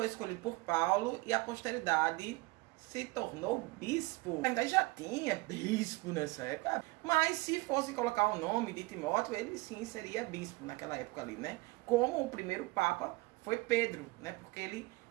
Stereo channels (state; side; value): quieter; left; 22.7 dB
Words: escolhido por Paulo e a posteridade se tornou bispo. Ainda já tinha bispo nessa época, mas se fosse colocar o nome de Timóteo, ele sim seria bispo naquela época ali, né? Como o primeiro papa foi Pedro, né? Porque ele